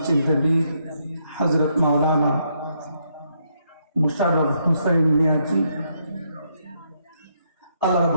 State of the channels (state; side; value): inverted; both; correlation -0.75